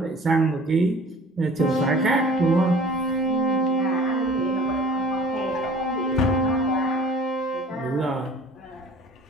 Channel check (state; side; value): normal; both; correlation 0.47